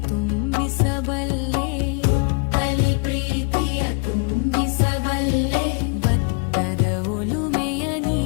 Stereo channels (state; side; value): quieter; right; 35.3 dB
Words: ತುಂಬಿಸಬಲ್ಲೆ, ಕಲಿ ಪ್ರೀತಿಯ ತುಂಬಿಸಬಲ್ಲೆ, ಭತ್ತದ ಒಲುಮೆಯ